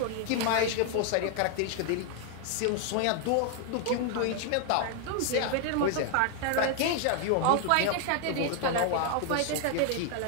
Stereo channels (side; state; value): both; different; correlation 0.00